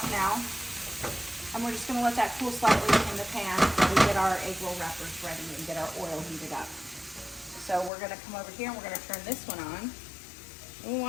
now, and we're just going to let that cool slightly in the pan while we get our egg roll wrappers ready and get our oil heated up. So we're going to come over here and we're going to turn this one on. We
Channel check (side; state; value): right; drops out; at 7.9 s